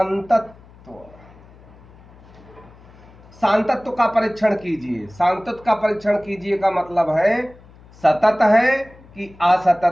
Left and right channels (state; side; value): noise; left; hum, 24 dB below the sound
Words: सांतत्व का परीक्षण कीजिए, सांतत्व का परीक्षण कीजिए का मतलब है सतत है कि